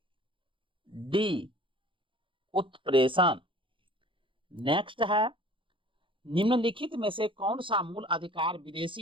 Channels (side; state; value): left; late; 0.25 ms